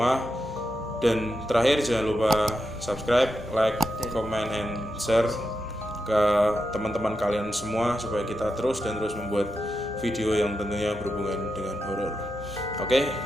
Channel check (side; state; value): both; normal; correlation 0.87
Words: Dan terakhir, jangan lupa subscribe, like, comment, and share ke teman-teman kalian semua supaya kita terus membuat video yang tentunya berhubungan dengan horor. Oke,